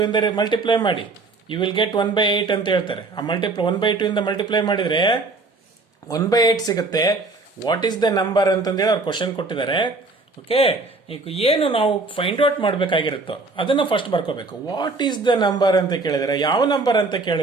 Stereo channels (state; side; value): quieter; left; 3.6 dB